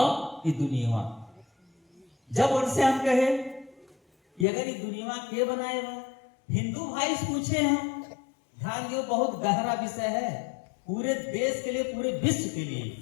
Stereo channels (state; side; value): drops out; right; at 4.5 s